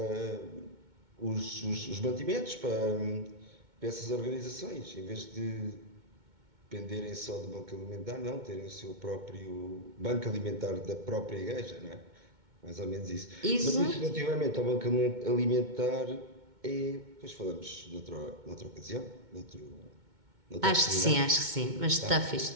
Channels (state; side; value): late; left; 2.2 ms